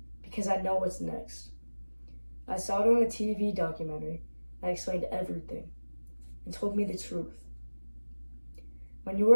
because I know what's next. I saw it on a TV documentary that explained everything and told me the truth. When you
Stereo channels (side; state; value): both; inverted; correlation -1.00